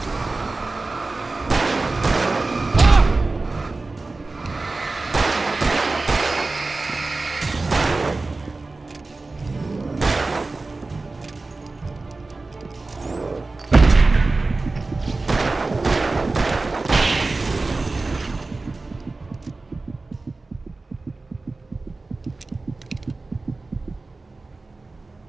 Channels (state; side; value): quieter; left; 3.5 dB